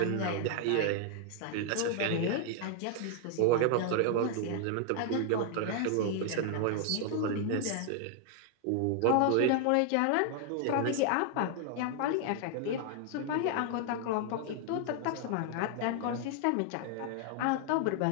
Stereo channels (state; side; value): different; both; correlation 0.00